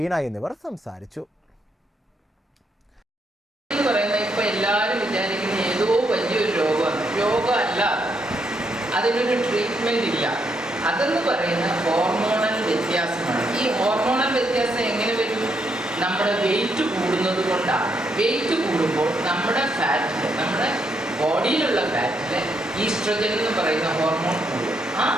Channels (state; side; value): normal; both; correlation 0.77